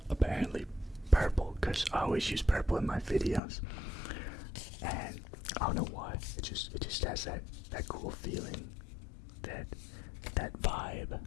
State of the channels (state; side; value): drops out; right; at 3.4 s